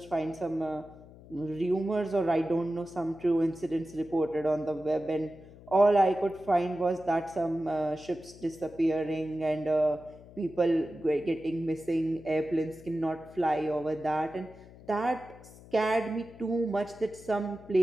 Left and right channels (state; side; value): noise; left; hum, 20 dB below the sound